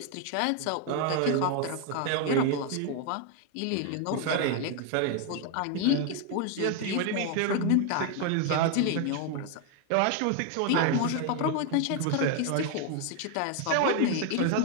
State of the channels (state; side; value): different; both; correlation 0.01